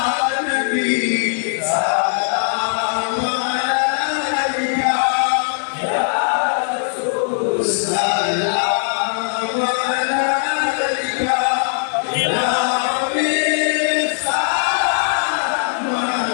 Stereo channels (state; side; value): silent; right; 61 dB below the other